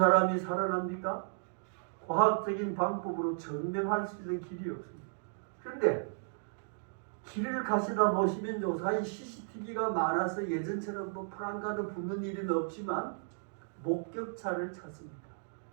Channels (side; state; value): left; silent; digital silence